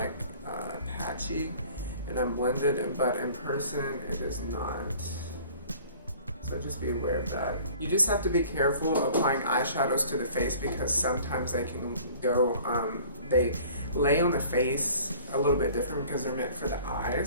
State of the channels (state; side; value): inverted; both; correlation -0.49